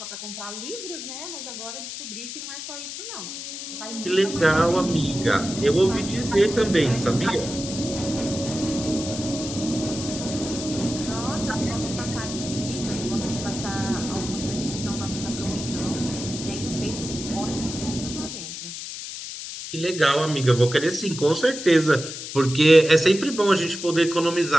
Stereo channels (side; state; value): left; noise; hiss, 8 dB below the sound